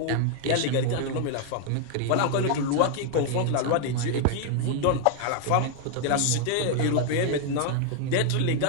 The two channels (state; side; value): different; both; correlation 0.00